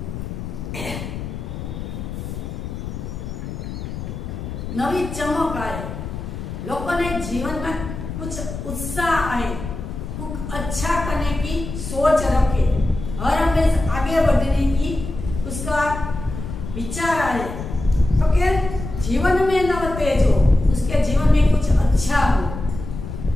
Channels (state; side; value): noise; left; rumble, 8 dB below the sound